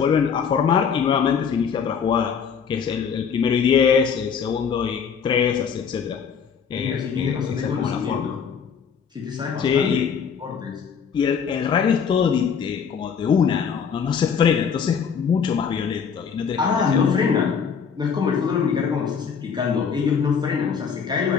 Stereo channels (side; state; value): right; quieter; 6.7 dB